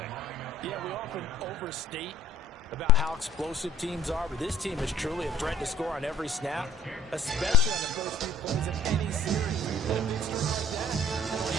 Yeah, we often overstate about how explosive teams are, but this team is truly a threat to score on every snap, especially on the first few plays of any series. And a big score like that, only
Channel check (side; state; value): both; normal; correlation 0.53